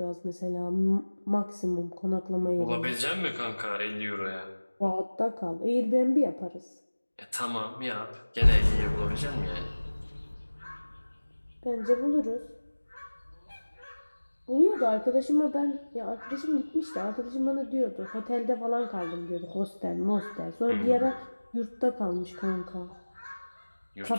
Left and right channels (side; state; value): both; inverted; correlation -1.00